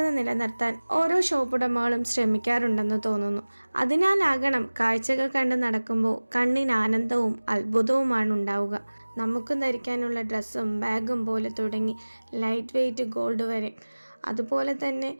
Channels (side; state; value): both; inverted; correlation -1.00